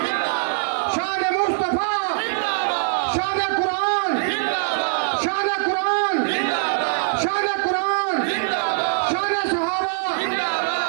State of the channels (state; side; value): silent; left; digital silence